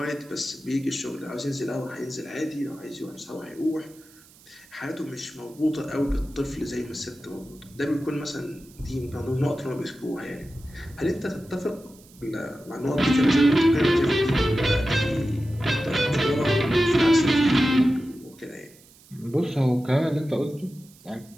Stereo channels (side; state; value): right; noise; hiss, 25 dB below the sound